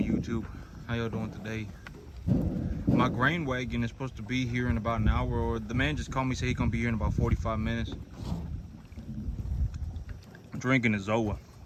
YouTube? How y'all doing today? My grain wagon is supposed to be here in about an hour, or the man just called me, said he's gonna be here in about 45 minutes. I'm drinking a Zoa.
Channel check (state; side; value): identical; both; correlation 1.00